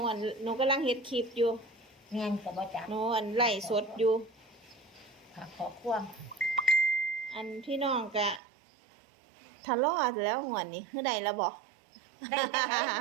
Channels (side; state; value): left; drops out; at 8.4 s